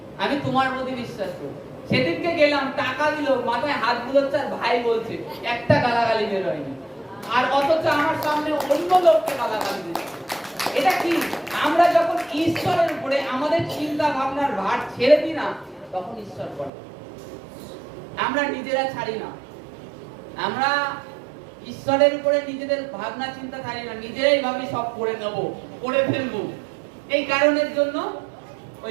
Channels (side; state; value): left; drops out; at 16.7 s